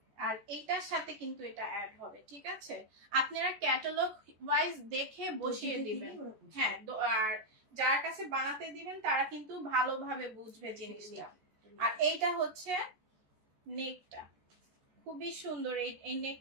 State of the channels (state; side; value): late; left; 14 ms